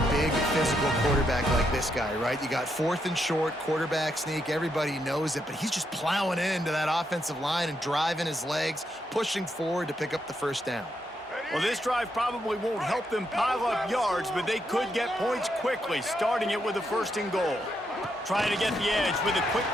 big physical quarterback like this guy, right? You got 4th and short, quarterback sneak, everybody knows it, but he's just plowing into that offensive line and driving his legs, pushing forward to pick up the first down. Well, this drive probably won't help them pile up yards, but they could get points quickly, starting it with a 1st and goal. Trying to get the edge with a quick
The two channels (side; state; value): both; normal; correlation 0.79